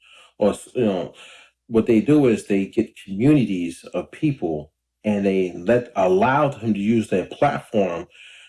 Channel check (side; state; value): both; identical; correlation 1.00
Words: or what they do is they get communities of people and they allow them to use their platform